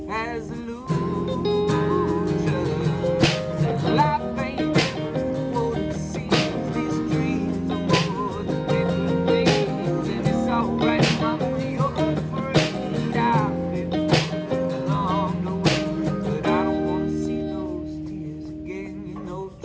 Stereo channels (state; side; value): identical; both; correlation 1.00